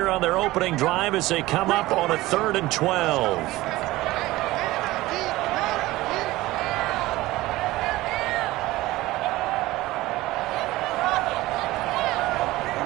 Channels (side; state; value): left; quieter; 18.2 dB